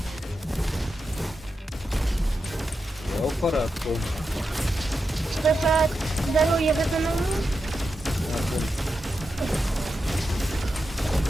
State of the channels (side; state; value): both; normal; correlation 0.88